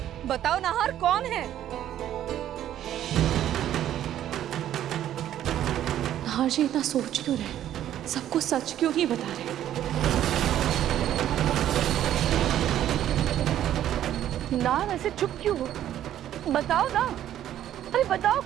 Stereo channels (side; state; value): left; quieter; 11.6 dB